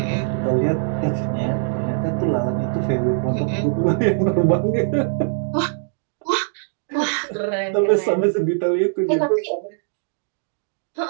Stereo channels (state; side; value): silent; left; digital silence